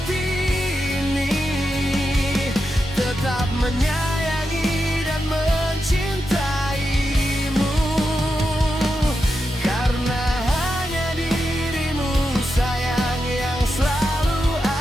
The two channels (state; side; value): normal; both; correlation 0.87